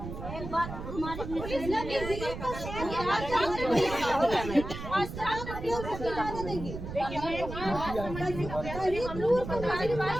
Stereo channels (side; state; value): right; noise; rumble, 8 dB below the sound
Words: एक बात हमारे पुलिस